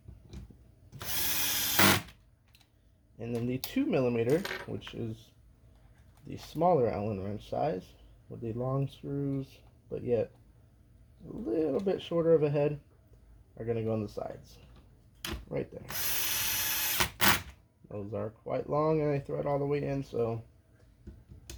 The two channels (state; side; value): identical; both; correlation 1.00